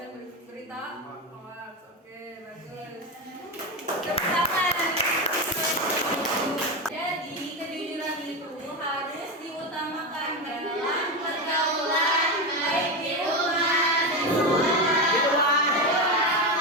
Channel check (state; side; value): normal; both; correlation 0.15